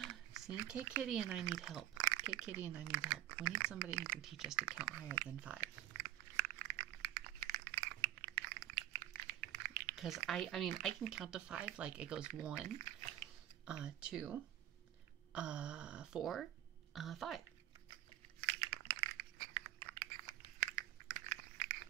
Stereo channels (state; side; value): quieter; left; 13.5 dB